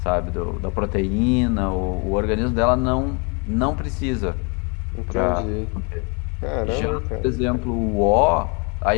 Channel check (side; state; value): right; quieter; 33.2 dB